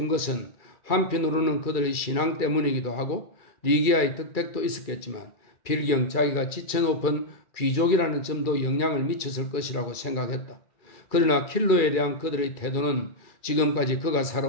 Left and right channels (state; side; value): late; right; 2.3 ms